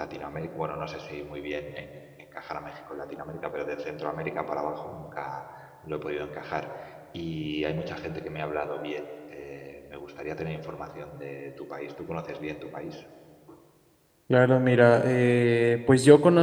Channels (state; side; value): identical; both; correlation 1.00